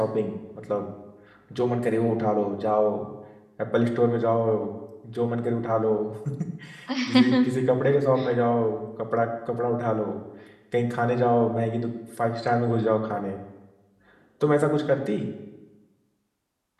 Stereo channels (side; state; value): both; identical; correlation 1.00